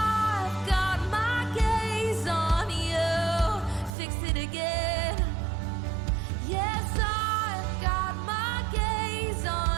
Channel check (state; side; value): drops out; left; at 3.9 s